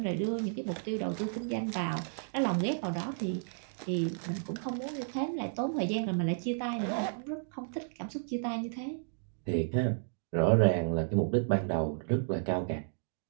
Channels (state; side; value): silent; left; digital silence